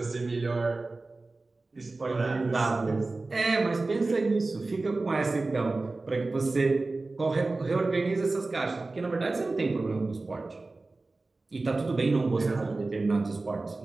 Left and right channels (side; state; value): left; quieter; 3.4 dB